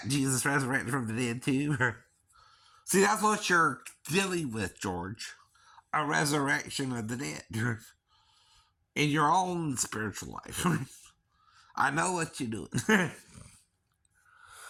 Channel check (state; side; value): identical; both; correlation 1.00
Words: Jesus resurrected from the dead too? See, that's what you're dealing with, George. A resurrection of the dead. In your own spiritual life. I know what you're doing.